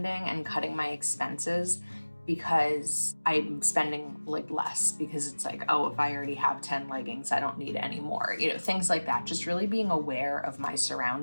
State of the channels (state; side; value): inverted; both; correlation -1.00